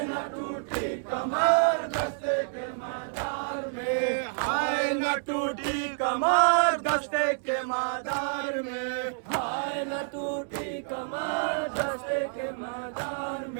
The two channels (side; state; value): left; silent; digital silence